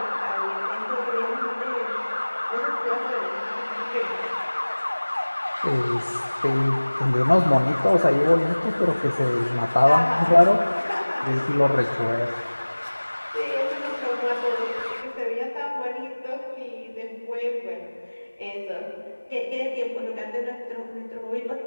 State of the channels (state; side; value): inverted; both; correlation -1.00